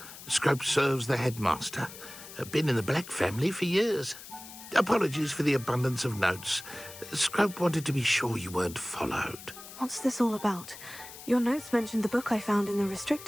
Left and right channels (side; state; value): left; noise; hiss, 15 dB below the sound